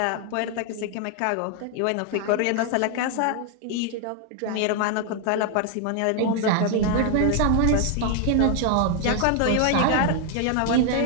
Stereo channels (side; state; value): both; different; correlation 0.00